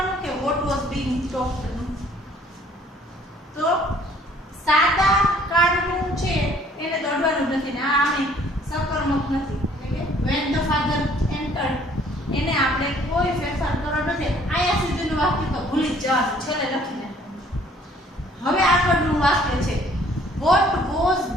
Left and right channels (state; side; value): normal; both; correlation 0.59